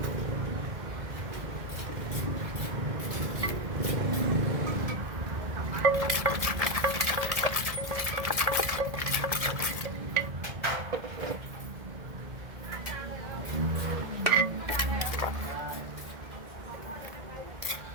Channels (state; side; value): late; left; 1.6 ms